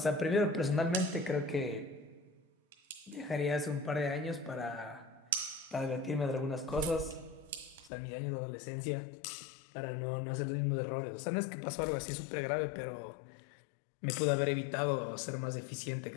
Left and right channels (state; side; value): drops out; right; at 7.9 s